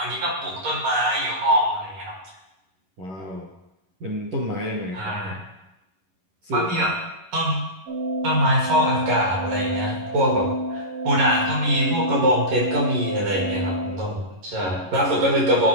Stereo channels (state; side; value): late; left; 11 ms